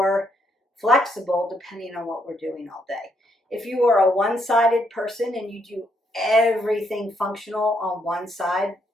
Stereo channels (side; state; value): both; normal; correlation 0.74